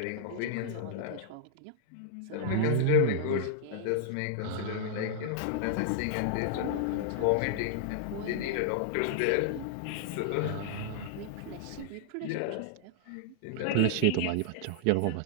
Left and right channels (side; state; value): both; different; correlation -0.01